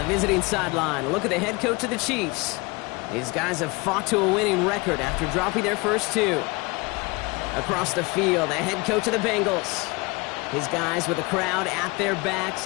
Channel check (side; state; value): right; quieter; 25.6 dB